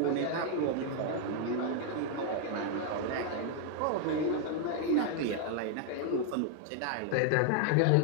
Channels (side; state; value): both; different; correlation 0.00